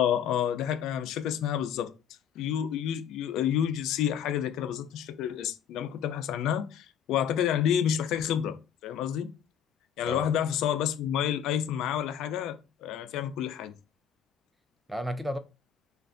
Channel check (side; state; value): right; quieter; 8.8 dB